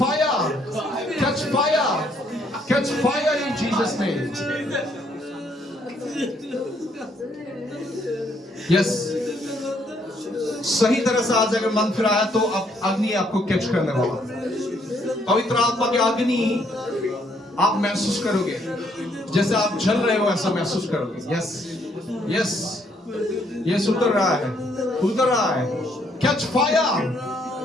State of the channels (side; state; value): both; normal; correlation 0.69